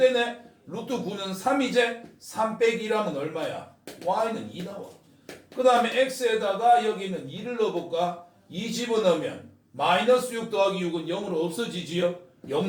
루트 9는 3이제 3 빼기 1하면 얼마야? y는 2 나와. 그 다음에 x에다가 여기는 2를 넣어볼까? 2 집어넣으면 마이너스 6 더하기 6은 0으로 없어지지요?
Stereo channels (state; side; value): identical; both; correlation 1.00